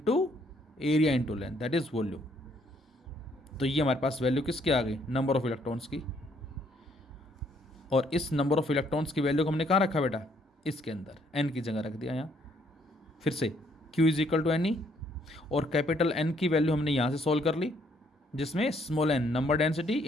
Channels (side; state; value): both; normal; correlation 0.68